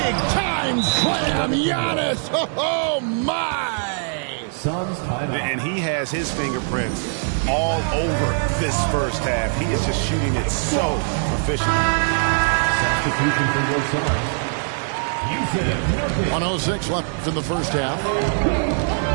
time slam, Giannis! Oh my! Suns timeout. And he has his fingerprints all over this first half. He is just shooting it so efficiently. Substitution for your Suns. 106 left in the first half.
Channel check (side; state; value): left; silent; digital silence